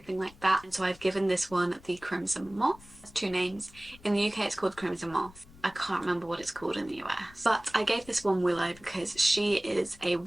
like that. And so I've given this one the Crimson Moth. It's two names. In the UK, it's called Crimson Moth. I can't remember what it's called in the US. But I gave this one Willow because she is a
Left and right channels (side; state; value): left; noise; rumble, 23 dB below the sound